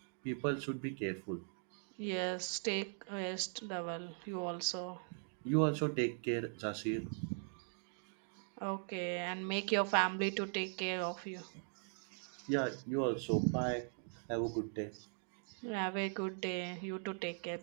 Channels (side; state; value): left; silent; 51 dB below the other